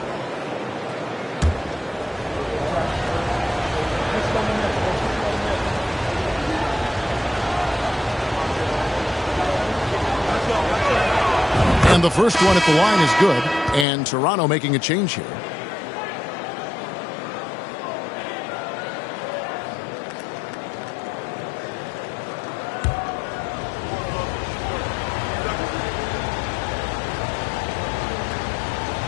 And the first one at the line is good. And Toronto making a change here.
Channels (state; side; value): drops out; right; at 13.9 s